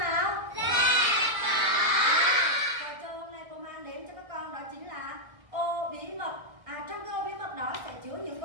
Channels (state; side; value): late; left; 1.6 ms